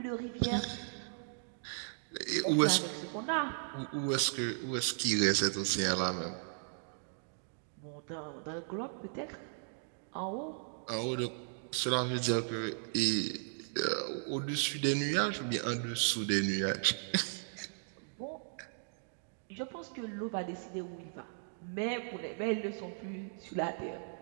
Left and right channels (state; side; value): silent; left; digital silence